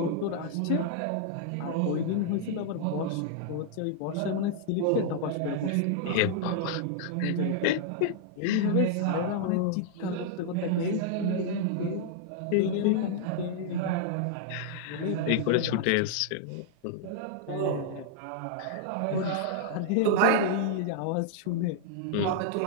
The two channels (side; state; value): both; different; correlation -0.01